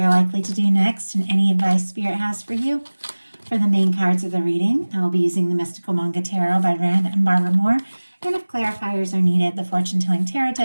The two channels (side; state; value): both; inverted; correlation -1.00